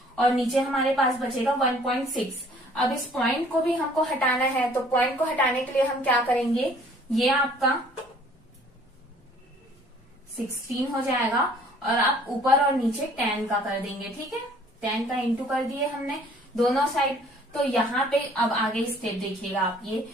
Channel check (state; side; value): normal; both; correlation 0.56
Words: और नीचे हमारे पास बचेगा 1.6। अब इस पॉइंट को भी हमको हटाना है, तो पॉइंट को हटाने के लिए हम क्या करेंगे, ये आपका 16 हो जाएगा और आप ऊपर और नीचे 10 का कर देंगे। ठीक है, 10 का इंटू कर दिए हमने दोनों साइड। तो यहाँ पे अब आगे स्टेप देखिएगा आप, ये